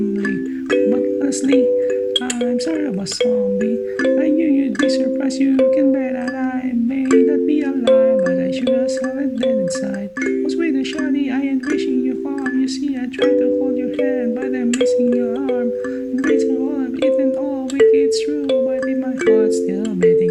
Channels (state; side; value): identical; both; correlation 1.00